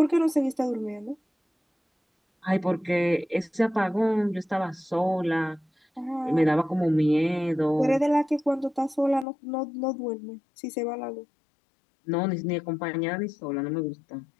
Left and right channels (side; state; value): right; drops out; at 9.2 s